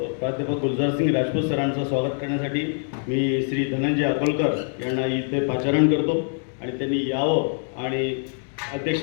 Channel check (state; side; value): silent; right; 62 dB below the other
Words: प्राध्यापक गुलजारसिंग राजपूत सरांचं स्वागत करण्यासाठी मी श्री धनंजय अकोलकर यांना इथे पाचारण करतो आणि त्यांनी यावं आणि अध्यक्ष